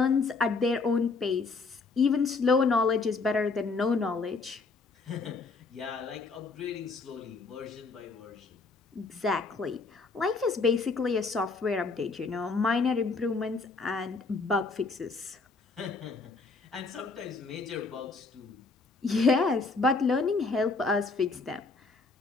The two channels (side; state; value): right; quieter; 4.1 dB